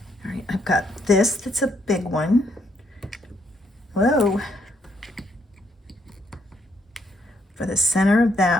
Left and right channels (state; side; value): normal; both; correlation 0.73